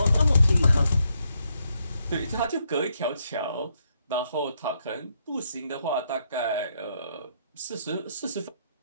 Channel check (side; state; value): both; inverted; correlation -0.76